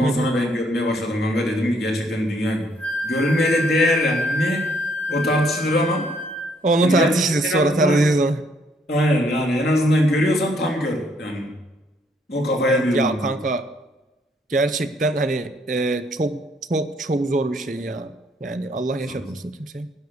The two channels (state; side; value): normal; both; correlation 0.68